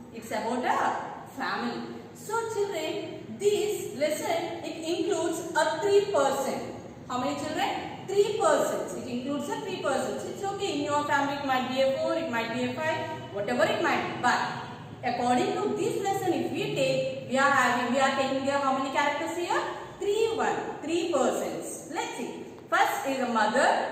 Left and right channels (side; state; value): both; identical; correlation 1.00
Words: It's about a family. So children, this lesson it includes a 3 persons. How many children? 3 persons. It includes a 3 persons. It's okay. In your family it might be a 4, it might be a 5, whatever it might be. But according to this lesson, if we take, we are taking here how many characters here? 3 persons. Let's see. First is a mother,